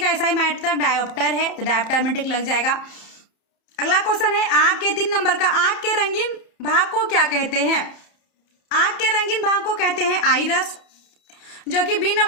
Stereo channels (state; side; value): late; right; 31 ms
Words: एसआई मात्रक डायोप्टर है, तो डायोप्टर में टिक लग जाएगा। अगला क्वेश्चन है, आंख के 3 नंबर का, आंख के रंगीन भाग को क्या कहते हैं। आंख के रंगीन भाग को कहते हैं आइरस, जो कि बी